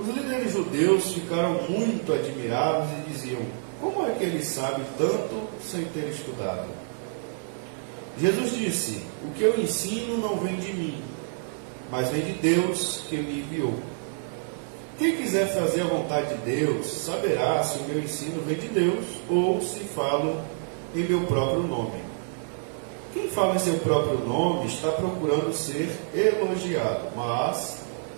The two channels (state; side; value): silent; left; 60 dB below the other